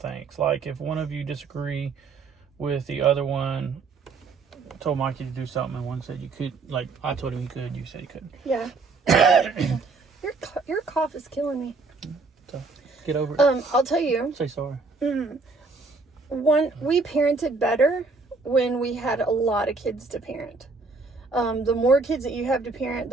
Like if one of you disagree with the other one, told Mikey to do something, and one said you could. Like, I told him he could, you said he couldn't. Yeah. Your cough is killing me. So get over it. I'll tell you. Say sorry. We parented better when we had a lot of kids to parent. The more kids that you have to parent,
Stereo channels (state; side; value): quieter; left; 4.0 dB